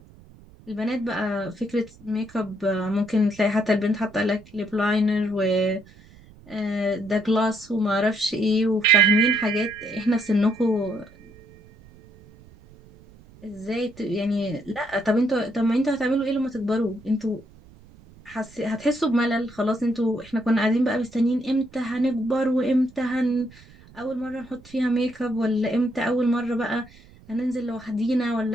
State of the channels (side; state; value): right; noise; rumble, 24 dB below the sound